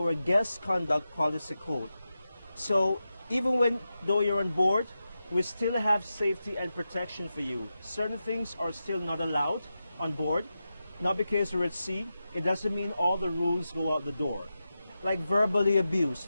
guest conduct policy code. So even though you're on board, we still have safety and protection for you. Certain things are still not allowed on board. Not because we're at sea, it doesn't mean all the rules go out the door. Like verbally abuse,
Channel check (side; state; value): both; inverted; correlation -0.91